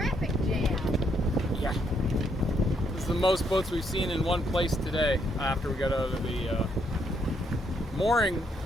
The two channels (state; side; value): normal; both; correlation 0.74